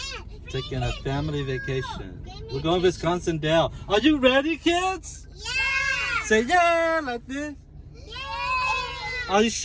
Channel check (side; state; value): both; identical; correlation 1.00